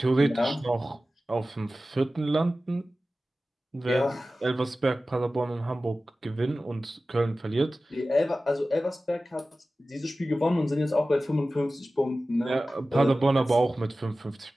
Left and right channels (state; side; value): normal; both; correlation 0.96